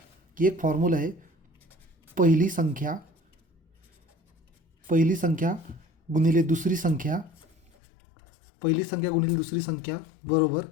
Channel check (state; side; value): drops out; right; at 7.7 s